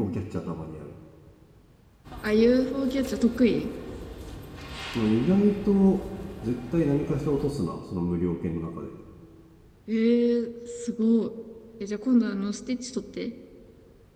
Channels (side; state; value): both; identical; correlation 1.00